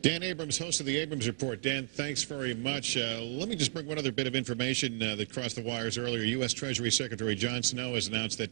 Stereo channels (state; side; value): silent; left; 56 dB below the other